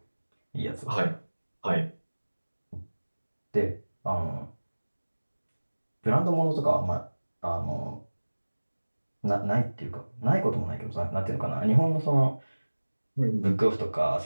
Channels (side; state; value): both; inverted; correlation -1.00